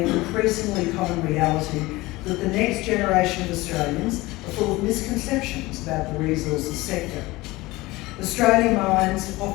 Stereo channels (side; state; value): right; quieter; 20.4 dB